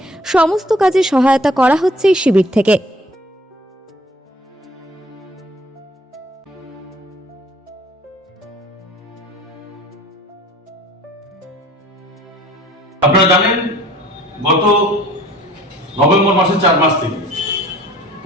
সমস্ত কাজে সহায়তা করা হচ্ছে এই শিবির থেকে। আপনারা জানেন গত নভেম্বর মাসের 4 মাস থেকে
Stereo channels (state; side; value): normal; both; correlation 0.52